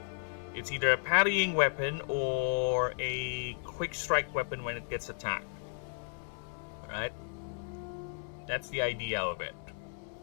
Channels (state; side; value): silent; right; 55 dB below the other